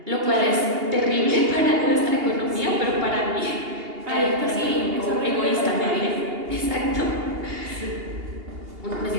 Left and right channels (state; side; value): late; left; 2.8 ms